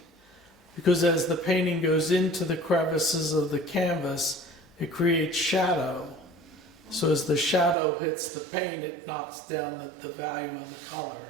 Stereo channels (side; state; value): left; drops out; at 7.8 s